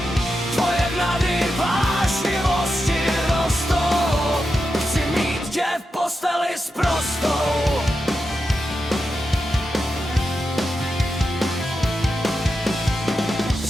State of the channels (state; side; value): normal; both; correlation 0.88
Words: Tvoje vnady vášnivosti rostou. Chci mít tě v posteli sprostou.